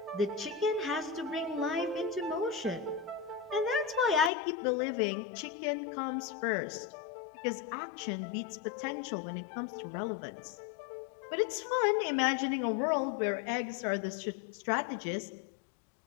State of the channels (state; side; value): drops out; right; at 4.3 s